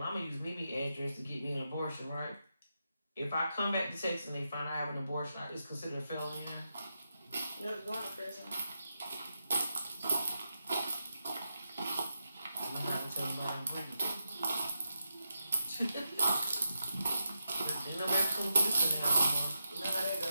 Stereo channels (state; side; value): inverted; both; correlation -0.86